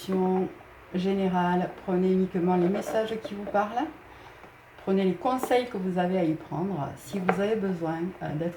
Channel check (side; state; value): both; identical; correlation 1.00